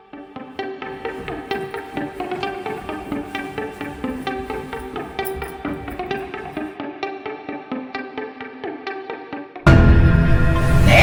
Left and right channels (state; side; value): identical; both; correlation 1.00